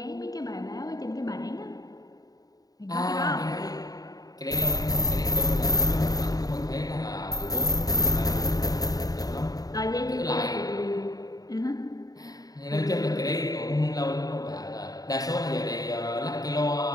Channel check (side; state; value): right; late; 0.18 ms